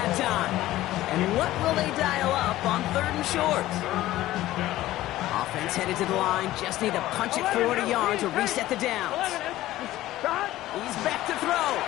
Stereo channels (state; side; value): quieter; right; 15.5 dB